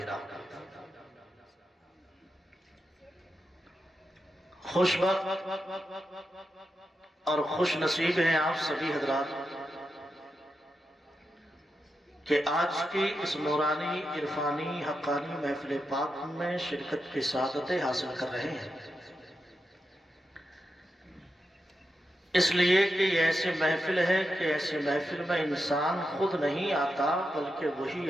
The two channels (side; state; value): both; normal; correlation 0.88